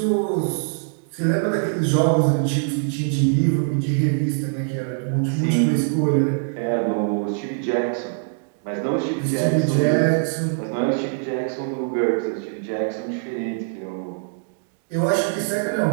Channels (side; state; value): left; silent; 64 dB below the other